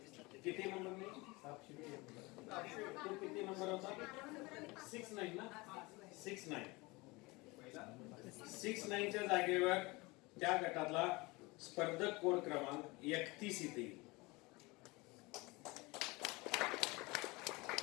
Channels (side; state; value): right; quieter; 24.1 dB